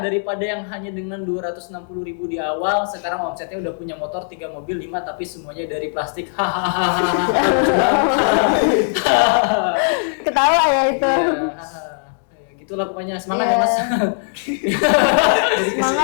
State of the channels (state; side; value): silent; right; 65 dB below the other